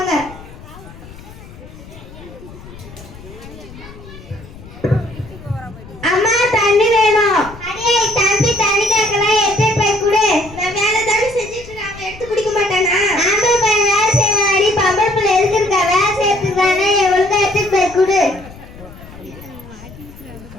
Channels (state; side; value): noise; left; rumble, 17 dB below the sound